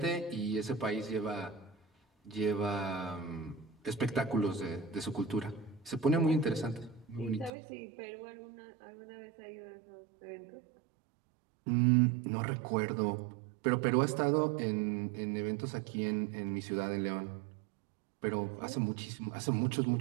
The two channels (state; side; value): drops out; left; at 7.5 s